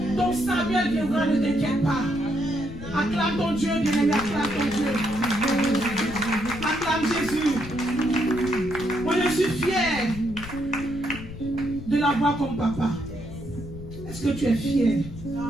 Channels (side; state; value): left; noise; rumble, 12 dB below the sound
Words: Ton Samuel viendra, ne t'inquiète pas. Acclame ton Dieu, bien-aimé, acclame ton Dieu. Acclame Jésus. Moi, je suis fier de l'avoir comme papa. Est-ce que tu es fier?